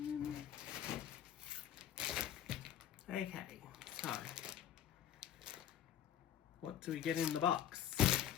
Okay, so what do we get in the box?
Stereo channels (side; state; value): right; quieter; 10.6 dB